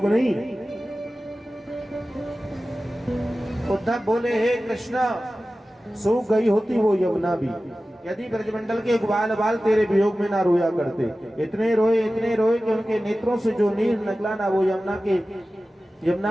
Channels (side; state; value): both; normal; correlation 0.95